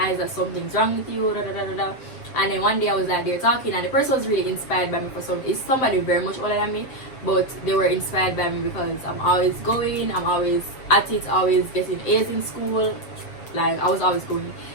that something's wrong with you, da, da, da, da, da. And then one day I was like, they're talking, and the person was really inspired by me for some. It's somebody very much older than me, but they were inspired by me because I'm always going, I'm always at it, always getting A's in school. Like I was always going.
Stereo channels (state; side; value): late; right; 7.7 ms